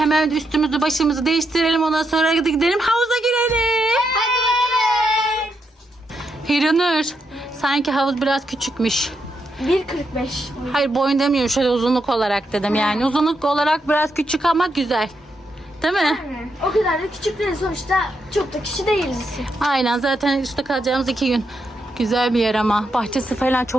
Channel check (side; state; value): both; normal; correlation 0.81